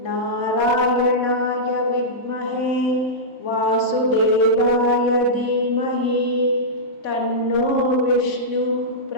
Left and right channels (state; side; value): late; right; 3.3 ms